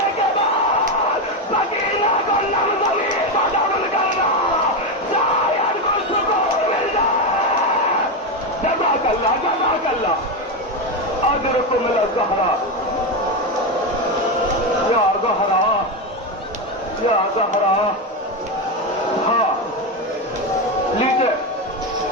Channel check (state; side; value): normal; both; correlation 0.11